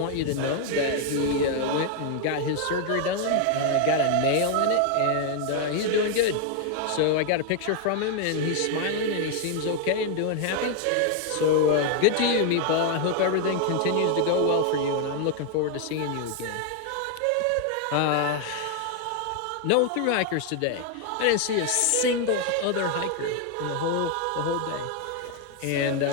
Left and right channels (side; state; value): both; different; correlation 0.00